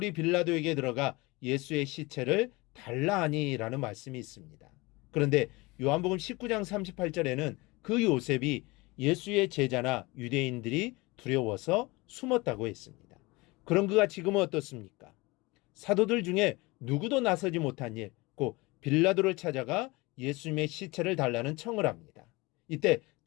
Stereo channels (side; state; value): right; quieter; 23.5 dB